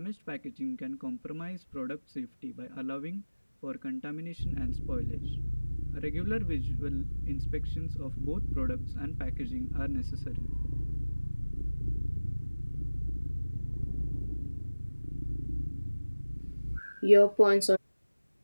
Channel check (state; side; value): inverted; both; correlation -1.00